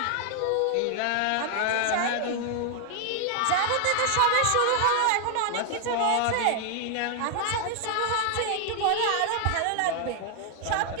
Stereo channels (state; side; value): different; both; correlation 0.00